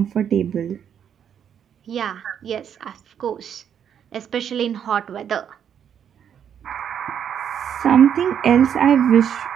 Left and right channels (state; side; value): quieter; left; 8.6 dB